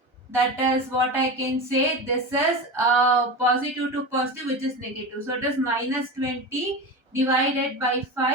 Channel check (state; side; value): late; left; 1.3 ms